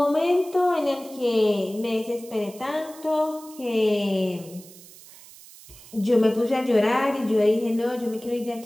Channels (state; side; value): noise; right; hiss, 20 dB below the sound